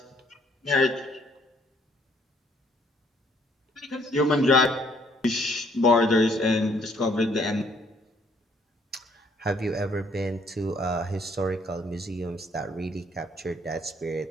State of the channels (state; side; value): normal; both; correlation 0.65